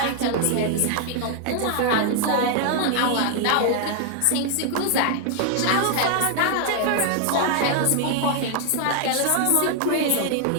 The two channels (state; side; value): different; both; correlation 0.00